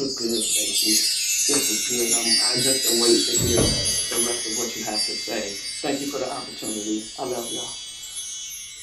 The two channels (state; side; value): identical; both; correlation 1.00